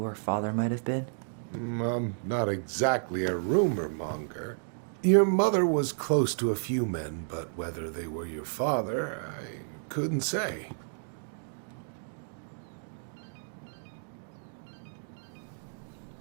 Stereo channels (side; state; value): left; silent; digital silence